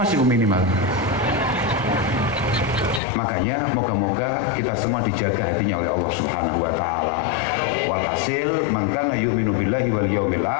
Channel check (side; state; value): right; drops out; at 3.0 s